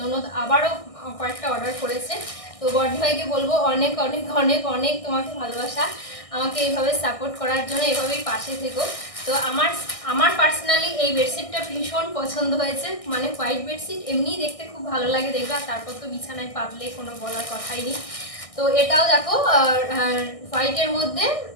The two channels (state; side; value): late; right; 1.6 ms